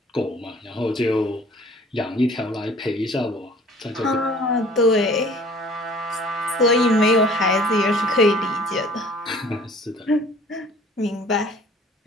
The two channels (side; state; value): both; normal; correlation 0.51